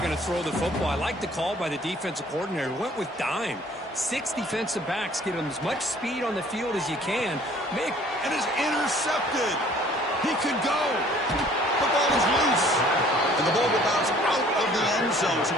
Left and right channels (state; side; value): normal; both; correlation 0.55